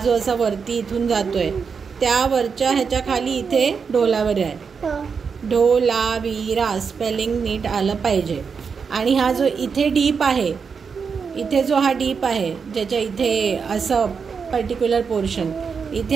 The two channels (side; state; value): left; quieter; 5.8 dB